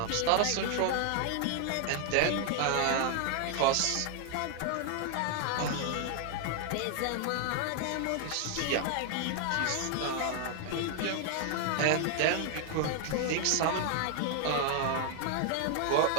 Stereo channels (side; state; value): both; different; correlation 0.00